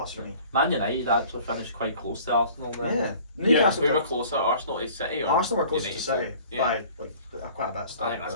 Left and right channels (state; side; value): inverted; both; correlation -0.49